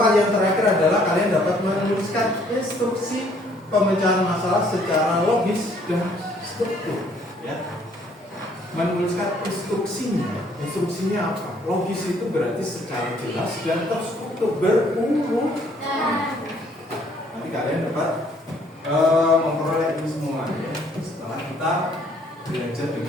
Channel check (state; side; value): normal; both; correlation 0.63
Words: yang terakhir adalah kalian dapat menuliskan instruksi pemecahan masalah secara logis dan struktur. Ya. Menuliskan instruksinya. Instruksinya apa? Logis itu berarti secara jelas dan terstruktur berurut. Nanti kalian dapat memperoleh ini semua ya, setelah kita belajar